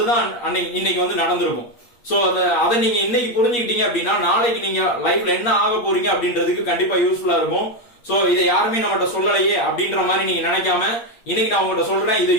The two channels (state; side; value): late; right; 8.6 ms